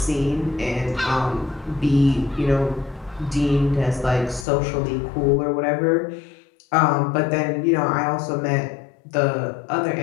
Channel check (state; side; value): drops out; right; at 4.5 s